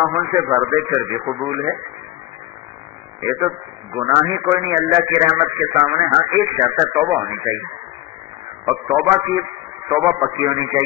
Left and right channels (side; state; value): right; quieter; 16.6 dB